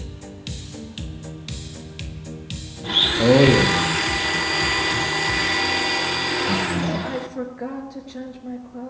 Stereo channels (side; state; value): both; identical; correlation 1.00